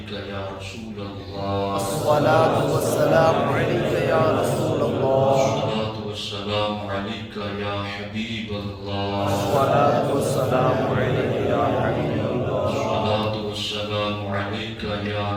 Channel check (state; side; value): identical; both; correlation 1.00